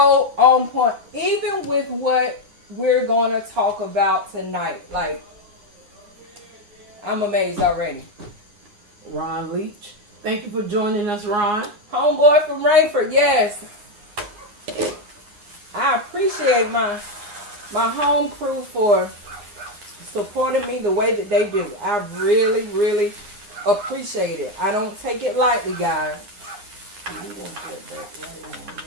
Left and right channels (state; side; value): late; left; 9.7 ms